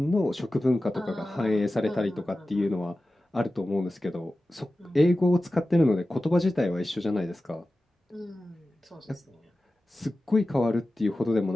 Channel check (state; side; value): normal; both; correlation 0.95